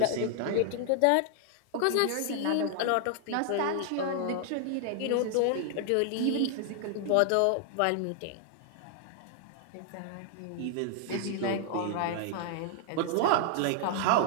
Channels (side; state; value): both; different; correlation 0.00